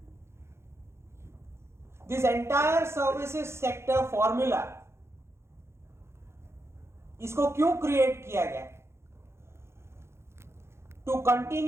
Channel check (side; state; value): left; late; 0.13 ms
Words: This entire services sector formula, इसको क्यों क्रिएट किया गया? To